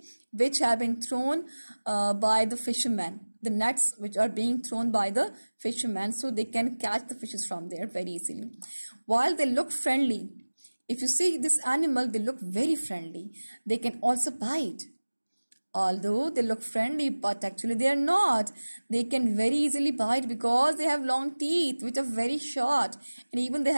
which have been thrown by the fishermen. The nets which are being thrown by the fishermen, so they can catch the fishes from there very easily. While they look friendly, if you see this animal, they look very friendly. They can also bite. Although they look friendly, but actually they are not. They can very easily bite because they have long teeth which are very short, and even they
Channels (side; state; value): both; inverted; correlation -1.00